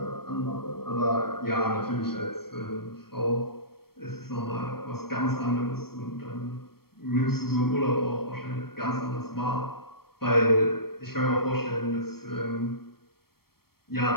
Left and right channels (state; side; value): late; right; 0.94 ms